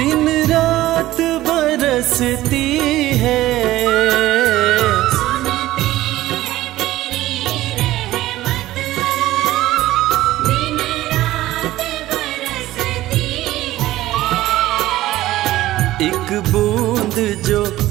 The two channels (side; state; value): left; quieter; 15.7 dB